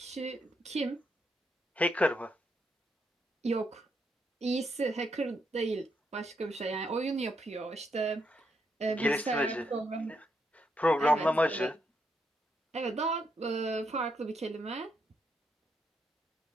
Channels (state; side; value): normal; both; correlation 0.78